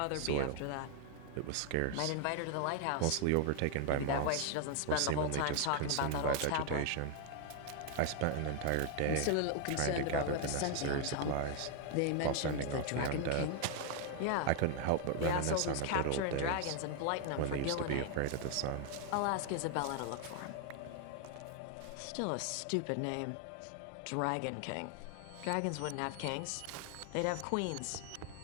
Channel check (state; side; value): different; both; correlation 0.00